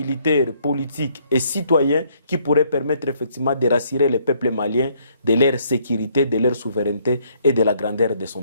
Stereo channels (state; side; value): inverted; both; correlation -0.68